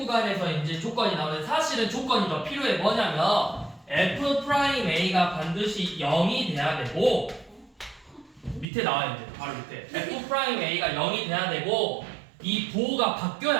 이제 조건이 나오는데 사실은 조건이 더 필요해. 뭐냐면 F'A가 반드시 0이 돼야 되고 밑에 나와요. 이제 바로 밑에 F'A가 0이 돼야 되고 이 부호가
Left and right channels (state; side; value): drops out; left; at 8.7 s